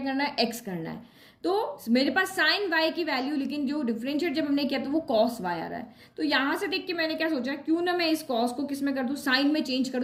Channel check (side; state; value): both; identical; correlation 1.00